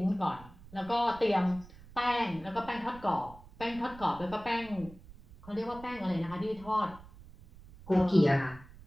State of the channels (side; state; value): right; noise; rumble, 19 dB below the sound